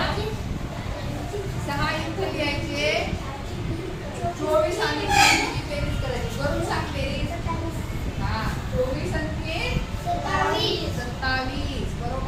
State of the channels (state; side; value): identical; both; correlation 1.00